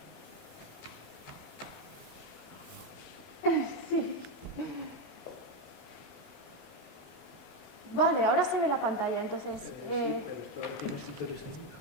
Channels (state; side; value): late; right; 27 ms